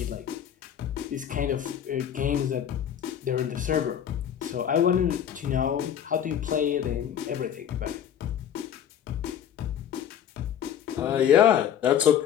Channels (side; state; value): right; quieter; 9.4 dB